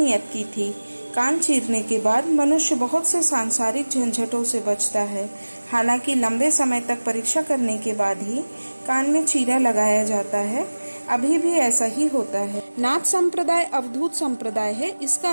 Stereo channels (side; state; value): both; inverted; correlation -1.00